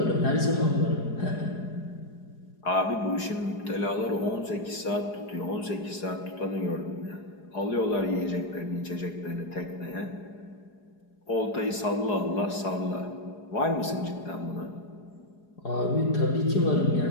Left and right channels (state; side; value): late; right; 4.8 ms